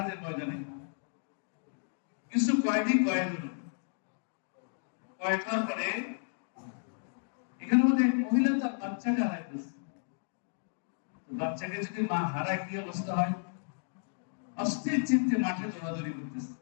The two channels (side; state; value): right; silent; digital silence